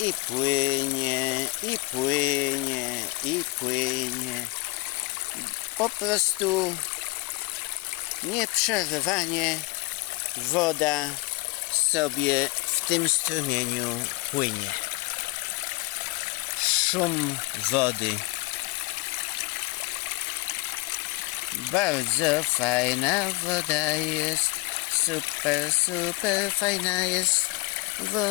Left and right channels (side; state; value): right; quieter; 23.7 dB